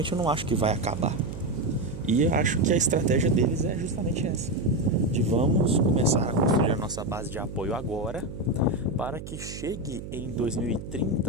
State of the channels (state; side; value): noise; right; hum, 10 dB below the sound